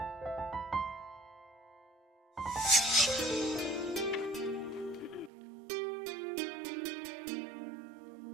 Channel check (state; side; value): drops out; left; at 5.3 s